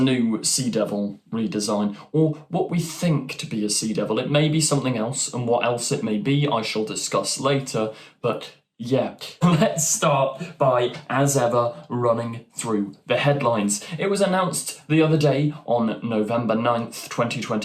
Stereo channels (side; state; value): both; identical; correlation 1.00